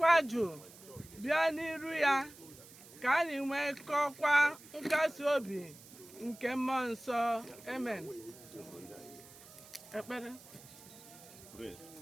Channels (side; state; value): right; noise; hiss, 20 dB below the sound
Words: jụụ bịa n'iru ya, ka anyị nwekọkwa nkasi obi nke mmụọ nsọ. Amen. Ekpere.